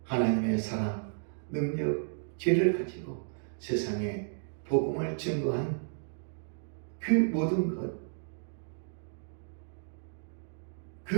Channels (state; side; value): silent; left; digital silence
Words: 하나님의 사랑, 능력, 지혜를 가지고 세상에 복음을 증거한 그 모든 것,